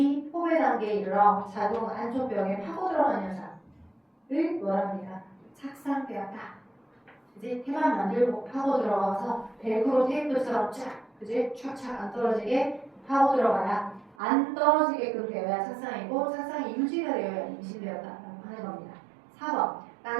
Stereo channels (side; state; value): left; drops out; at 14.2 s